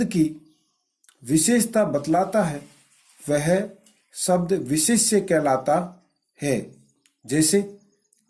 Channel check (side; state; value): both; identical; correlation 1.00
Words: की विशेषता बतलाता है वह शब्द विशेष्य कहलाता है। जैसे